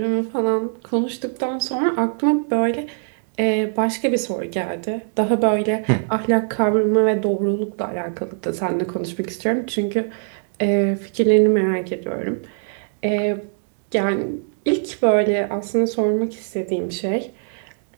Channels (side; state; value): left; silent; digital silence